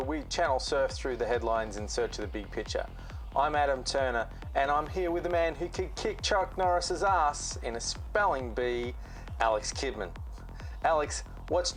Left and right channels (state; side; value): identical; both; correlation 1.00